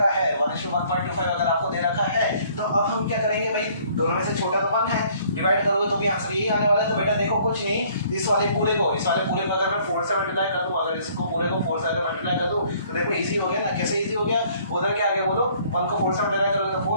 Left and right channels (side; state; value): both; inverted; correlation -0.59